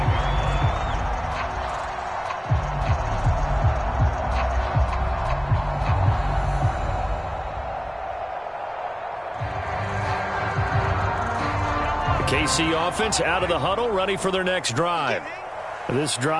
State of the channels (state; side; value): identical; both; correlation 1.00